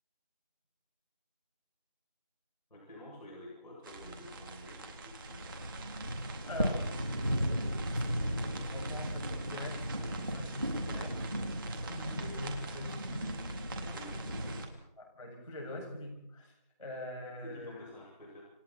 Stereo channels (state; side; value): inverted; both; correlation -0.78